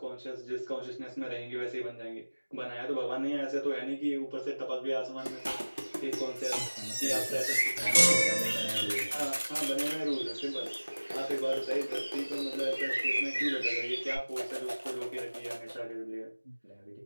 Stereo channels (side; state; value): both; inverted; correlation -1.00